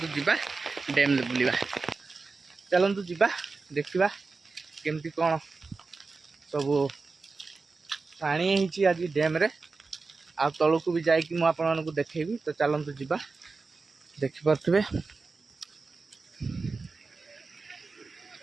जीवा डैम बुलवा चलतु जीवा देखा केमती कौन सब पानी होती आज डैम रे आ तलू भी जाइकी मुझे आपको देखेबी। तो चलतु जीवा देखिपे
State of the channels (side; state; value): left; quieter; 4.1 dB